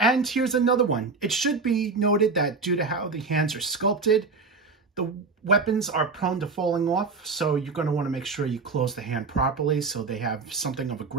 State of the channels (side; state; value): left; quieter; 4.3 dB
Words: here's another one. It should be noted that due to how the hands are sculpted, the weapons are prone to falling off, so you're going to want to make sure you close the hand properly so they have something of a